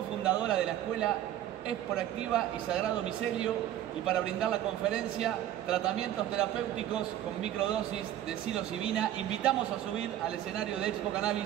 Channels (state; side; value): quieter; left; 12.1 dB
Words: de la Escuela Esporactiva y Sagrado Micelio, y para brindar la conferencia Tratamientos terapéuticos con microdosis de psilocibina, invitamos a subir al escenario de Expo